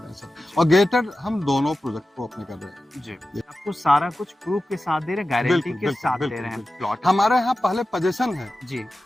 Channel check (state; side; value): normal; both; correlation 0.94